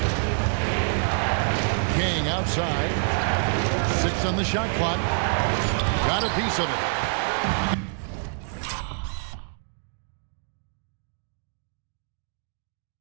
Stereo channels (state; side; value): silent; left; 61 dB below the other